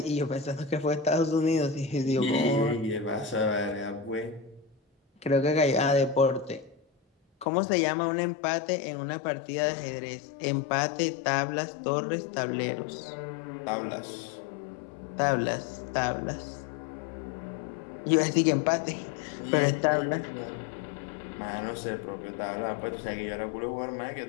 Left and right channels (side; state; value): right; drops out; at 7.5 s